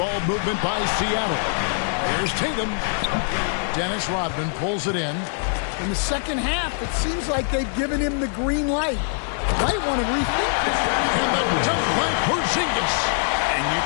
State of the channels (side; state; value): right; silent; digital silence